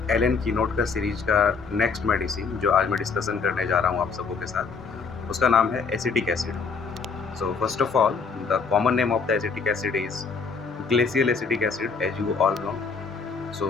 एलन कीनोट का सीरीज का नेक्स्ट मेडिसिन जो आज मैं डिस्कशन करने जा रहा हूँ आप सबों के साथ, उसका नाम है acetic acid. So first of all, the common name of the acetic acid is glacial acetic acid, as you all know. So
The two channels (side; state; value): right; quieter; 5.1 dB